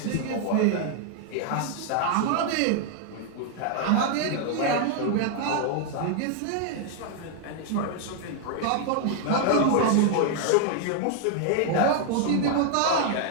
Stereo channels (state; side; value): different; both; correlation 0.00